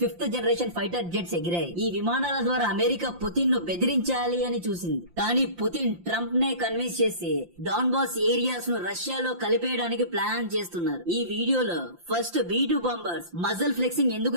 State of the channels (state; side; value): late; left; 5.8 ms